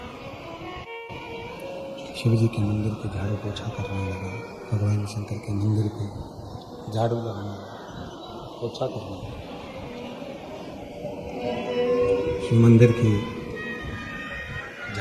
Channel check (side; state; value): both; identical; correlation 1.00